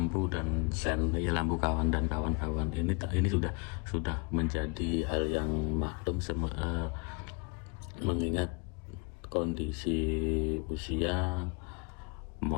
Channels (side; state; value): right; quieter; 31.7 dB